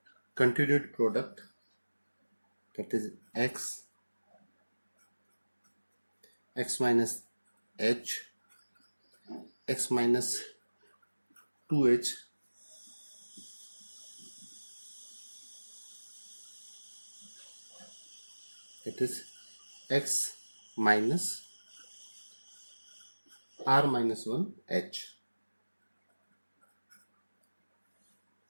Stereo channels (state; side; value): inverted; both; correlation -1.00